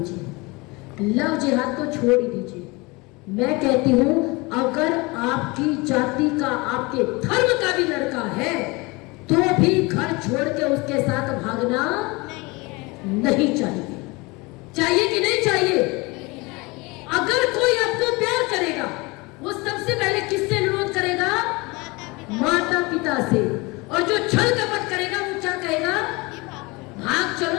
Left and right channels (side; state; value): right; quieter; 25.2 dB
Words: लव जिहाद को छोड़ ही दीजिए। मैं कहती हूं अगर आपकी जाति का, आपके धर्म का भी लड़का है तो भी घर छोड़ के उसके साथ भागना नहीं चाहिए। चाहिए कि नहीं चाहिए? अगर कोई आपको प्यार करेगा वो सबसे पहले किससे अनुरोध करेगा? माता पिता से। और जो छल कपट करेगा वो क्या कहेगा? भाग